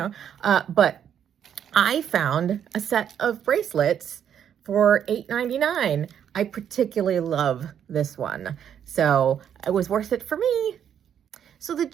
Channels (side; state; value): left; quieter; 9.0 dB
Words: but I found a set of bracelets for $8.99. I particularly love this one, so it was worth it for me. So the